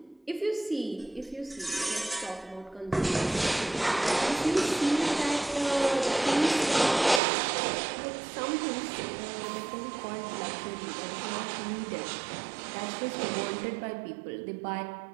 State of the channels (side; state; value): left; drops out; at 7.2 s